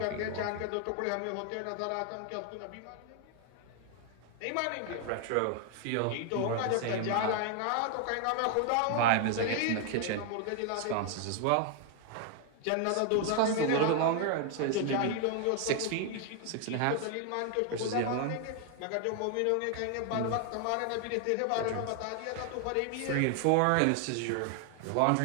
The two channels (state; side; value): different; both; correlation 0.00